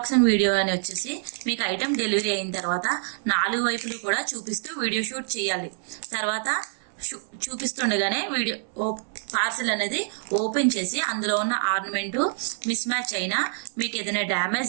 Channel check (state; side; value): silent; left; 61 dB below the other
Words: వీడియో అని వచ్చేసి మీకు ఐటమ్ డెలివరీ అయిన తర్వాత 4 వైపులు కూడా చూపిస్తూ వీడియో షూట్ చేయాలి. తర్వాత చూపిస్తుండగానే వీడియో పార్సల్ అనేది ఓపెన్ చేసి అందులో ఉన్న ఆర్నమెంట్ మిస్ మ్యాచ్ అయినా, మీకు ఏదైనా